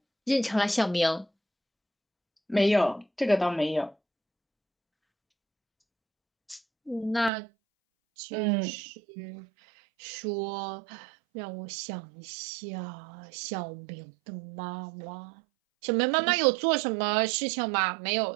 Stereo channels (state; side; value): drops out; left; at 7.3 s